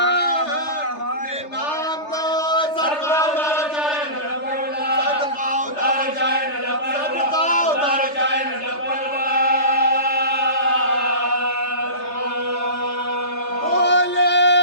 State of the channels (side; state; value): right; late; 3.3 ms